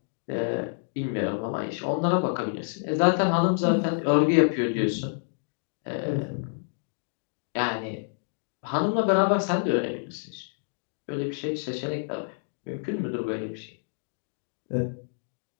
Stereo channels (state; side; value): silent; right; digital silence